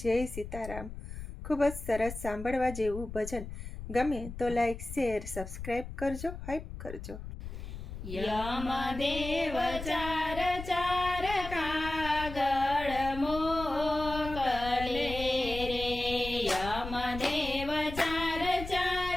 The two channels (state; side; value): noise; left; rumble, 10 dB below the sound